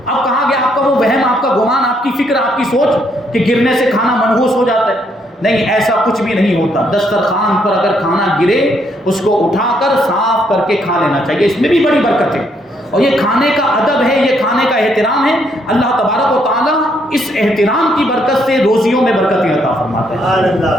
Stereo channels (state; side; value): normal; both; correlation 0.72